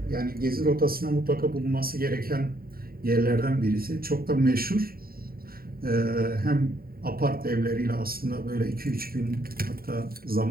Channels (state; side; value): late; left; 0.43 ms